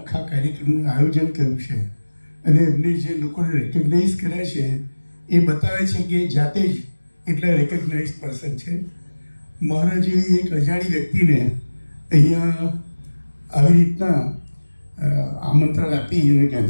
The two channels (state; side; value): inverted; both; correlation -1.00